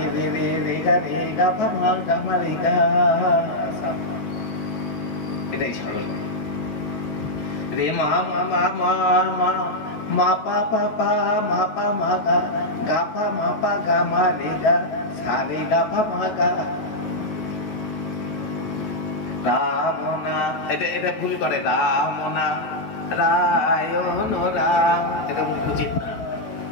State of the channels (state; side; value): late; right; 9.3 ms